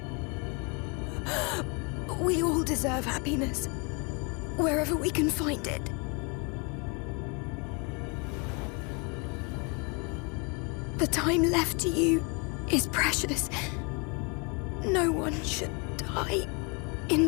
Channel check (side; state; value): right; quieter; 31.9 dB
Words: We all deserve happiness, wherever we can find it. The time left to you is precious. No one should die